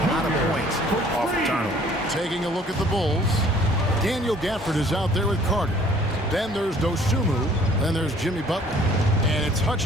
lot of points off the turnover. Taking a look at the Bulls, Daniel Gafford is out there with Carter. Then there's Dosunmu. Then there's Jimmy Butler. And it's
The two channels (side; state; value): both; normal; correlation 0.56